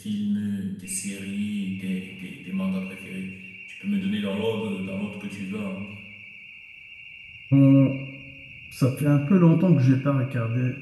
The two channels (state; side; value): identical; both; correlation 1.00